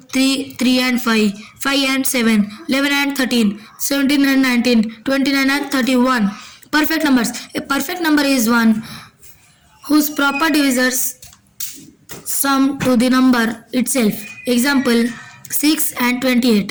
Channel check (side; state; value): both; identical; correlation 1.00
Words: 3, 3 and 5, 5 and 7, 11 and 13, 17 and 19, 29 and 31. Perfect numbers. A perfect number is one whose proper divisors sum to the number itself. Example 6 and